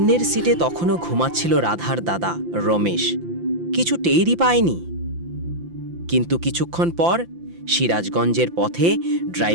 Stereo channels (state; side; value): late; left; 5.8 ms